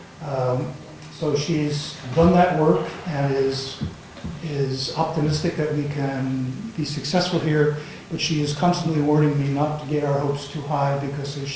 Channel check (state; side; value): identical; both; correlation 1.00